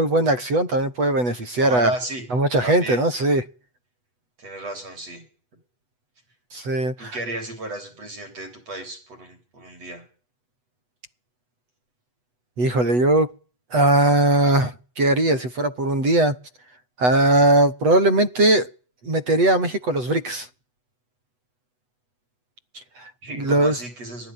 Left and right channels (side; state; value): left; late; 8.1 ms